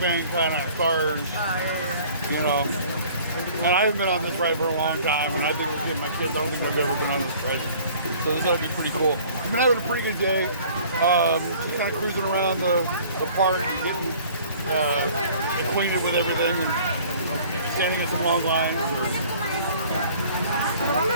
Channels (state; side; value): inverted; both; correlation -0.51